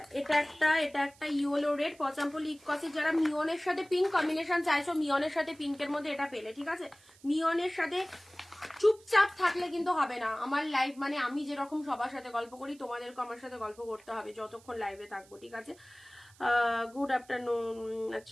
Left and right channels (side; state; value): right; noise; hiss, 26 dB below the sound